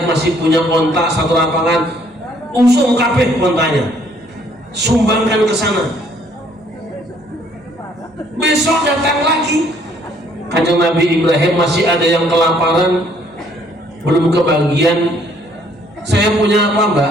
masih punya onta satu lapangan, usung kabeh ontanya, sumbangkan ke sana. Besok datang lagi, Kanjeng Nabi Ibrahim masih ada yang kelaparan, belum kebagian. Saya punya apa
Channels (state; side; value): normal; both; correlation 0.64